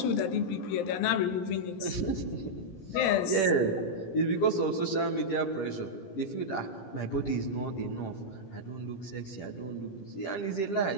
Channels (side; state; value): right; late; 17 ms